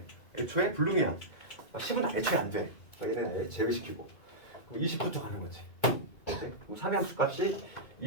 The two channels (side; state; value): right; late; 2.3 ms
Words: 애초에 불능이야. 10은 애초에 안 돼. 그러니까 얘는 제외시키고 20부터 가는 거지. 그렇지? 그럼 3의 함수값이